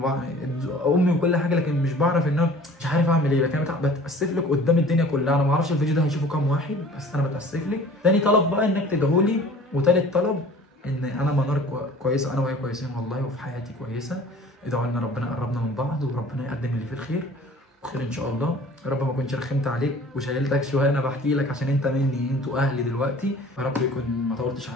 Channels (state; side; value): normal; both; correlation 0.47